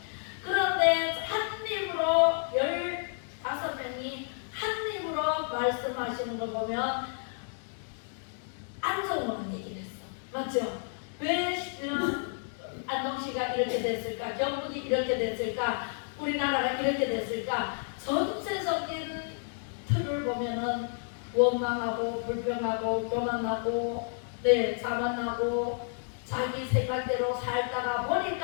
그런데 한 입으로 15명이 한 입으로 말씀하시는 걸 보면 안 좋은 얘기를 했어. 맞죠? 왜 안동시가 이렇게 됐을까? 경북이 이렇게 됐을까? 우리나라가 이렇게 됐을까? 전체적인 틀을 보면은 원망하고 불평하고 교만하고 자만하고 자기 생각대로 살다가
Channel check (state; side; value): silent; right; 57 dB below the other